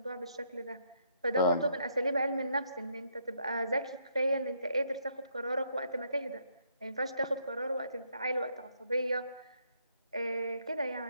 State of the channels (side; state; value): both; inverted; correlation -0.72